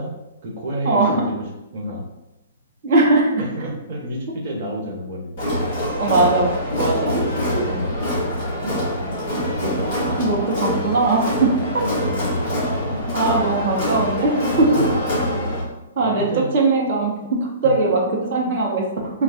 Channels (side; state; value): both; inverted; correlation -0.40